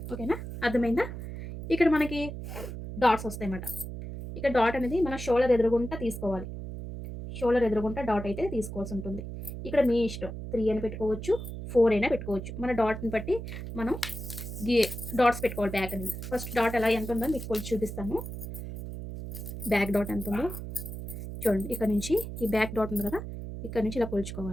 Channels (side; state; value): right; noise; hum, 8 dB below the sound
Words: ఓకేనా, అర్థమైందా? ఇక్కడ మనకి డాట్స్ వస్తాయి అన్నమాట. ఇక్కడ డాట్ అనేది మన షోల్డర్ ఎదురుగుంటా తీసుకోవాలి. షోల్డర్ ఎదురుగుంటా డాట్ అయితే తీసుకోవాల్సి ఉంటుంది. ఇక్కడ మీ ఇష్టం, 3 అయినా పెట్టుకోవచ్చు, 4 అయినా పెట్టుకోవచ్చు. మన డాట్ని బట్టి మనం డాట్స్ పెట్టుకోవాలి. బ్యాక్ అనేది ఫస్ట్ డాట్ ఎలా ఎంత ఉందో మీకు కొంచెం చూపిస్తాను. బ్యాక్ డాట్ ఎంత ఉందో చూడండి. ఇక్కడ నుంచి ఈ బ్యాక్ డాట్ ఉంది కదా, ఇక్కడ నుంచి ఇలా